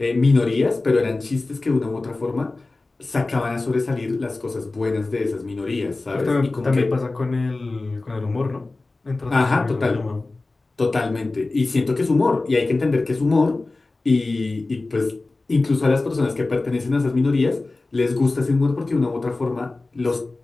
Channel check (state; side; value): quieter; right; 3.3 dB